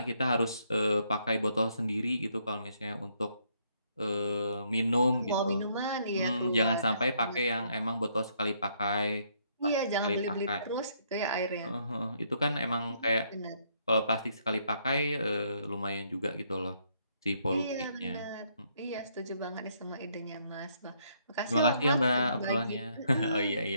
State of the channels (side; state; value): both; inverted; correlation -0.71